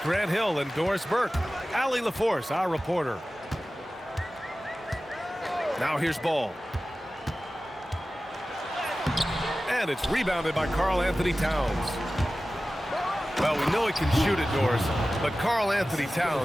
Grant Hill and Doris Burke. Allie LaForce, our reporter. Now here's ball. And it's rebounded by Karl Anthony Towns. Well, we know he can shoot it, Doris, but Karl Anthony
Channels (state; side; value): normal; both; correlation 0.96